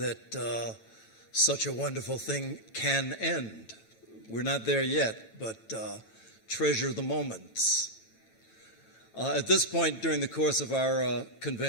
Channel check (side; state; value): right; late; 9.0 ms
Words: such a wonderful thing can end. We're not there yet, but treasure the moments. At this point during the course of our